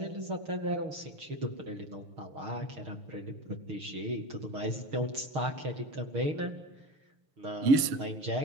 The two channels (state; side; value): late; left; 6.5 ms